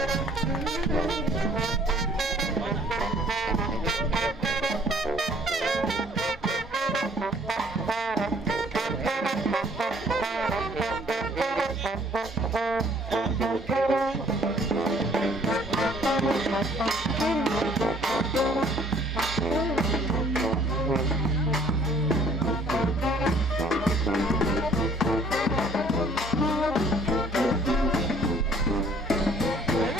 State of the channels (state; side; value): normal; both; correlation 0.58